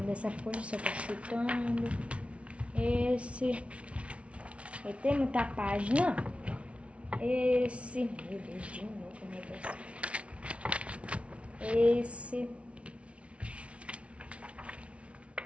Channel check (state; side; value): late; left; 0.062 ms